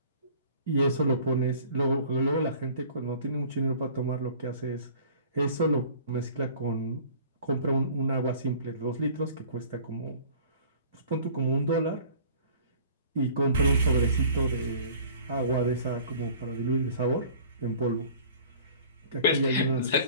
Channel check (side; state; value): both; inverted; correlation -0.48